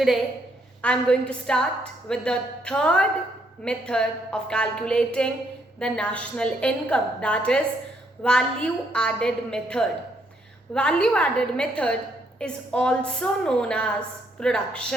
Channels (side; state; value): both; normal; correlation 0.72